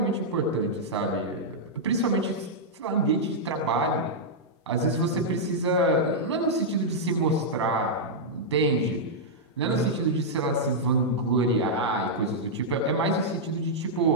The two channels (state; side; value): normal; both; correlation -0.07